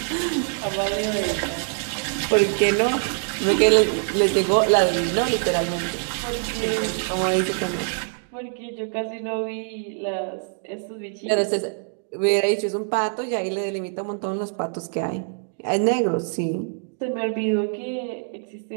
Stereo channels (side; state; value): left; silent; 62 dB below the other